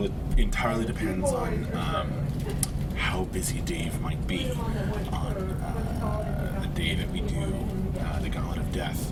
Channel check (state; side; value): identical; both; correlation 1.00